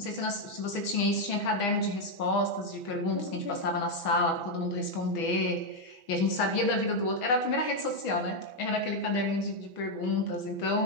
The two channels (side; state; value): right; late; 6.2 ms